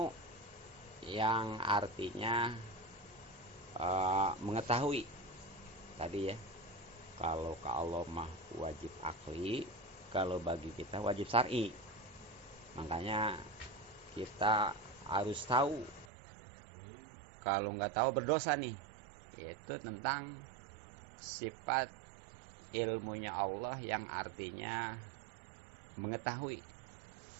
yang artinya mengetahui tadi ya. Kalau ke Allah mah wajib akli, kalau bagi kita wajib syar'i. Makanya kita harus tahu. Kalau nggak tahu berdosa nih, yaitu tentang sifat ilmunya Allah yang artinya mengetahui.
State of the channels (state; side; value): drops out; left; at 16.1 s